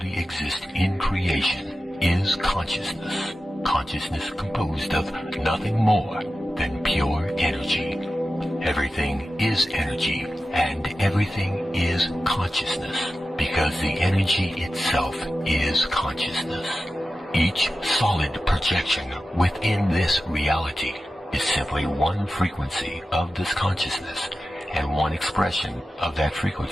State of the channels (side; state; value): both; normal; correlation 0.93